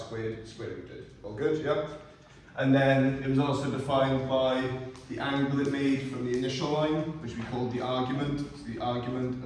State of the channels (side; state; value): both; identical; correlation 1.00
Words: square rooted? All good, yeah? And then it was also defined by the angle it made from the initial line, which we called the argument. So the argument